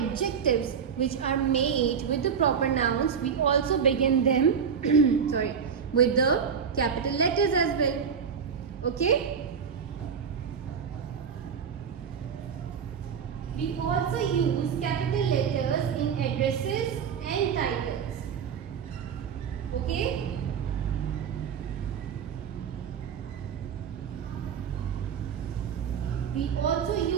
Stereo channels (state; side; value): quieter; left; 6.9 dB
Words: which are made with the proper nouns, we also begin them with the capital letters as well. Okay? We also use capital letters in addresses and titles. Okay? We also